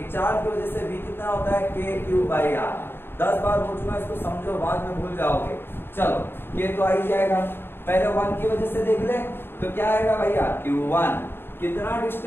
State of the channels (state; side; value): late; right; 0.11 ms